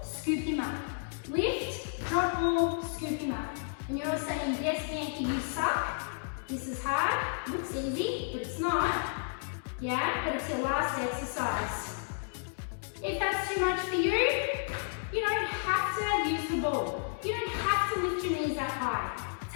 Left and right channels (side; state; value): right; silent; digital silence